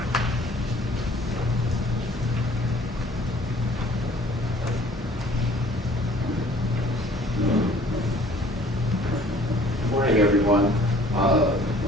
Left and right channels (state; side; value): normal; both; correlation 0.54